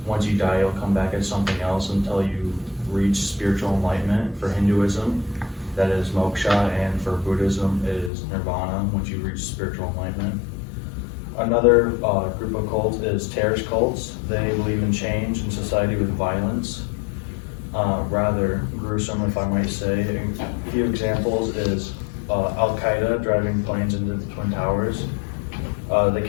once you die, you'll come back as something else until you reach spiritual enlightenment. For Hinduism, that is moksha, and for Buddhism, it is nirvana, once you reach spiritual enlightenment. Another group of cults is terrorist cults. They believe in change in society with violence. Rather gruesome, if I might say. A few examples is Al-Qaeda driving planes into the Twin Towers. The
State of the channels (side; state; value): right; drops out; at 8.1 s